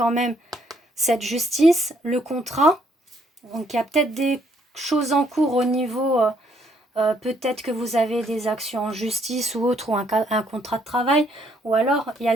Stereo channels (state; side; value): normal; both; correlation 0.69